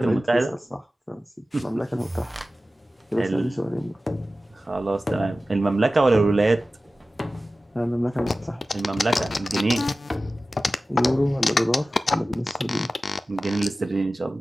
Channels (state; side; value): normal; both; correlation 0.96